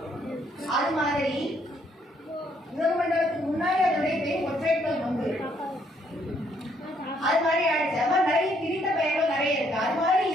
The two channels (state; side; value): normal; both; correlation 0.69